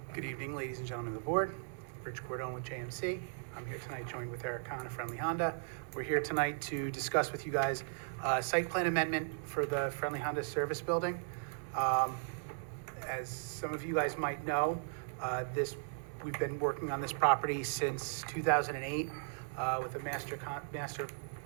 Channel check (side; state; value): left; silent; digital silence